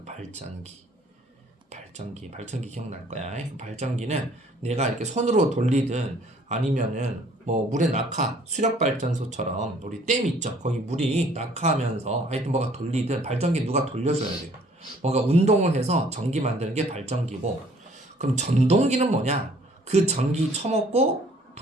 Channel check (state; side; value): normal; both; correlation 0.58